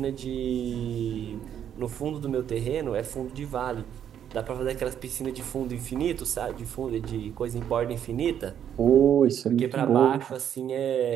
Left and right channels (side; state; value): left; quieter; 9.4 dB